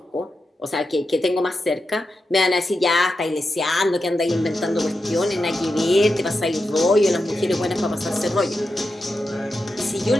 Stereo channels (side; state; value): both; normal; correlation 0.89